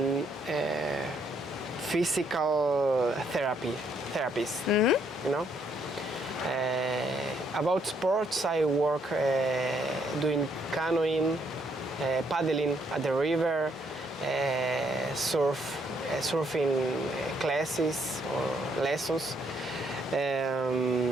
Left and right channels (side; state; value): both; normal; correlation 0.71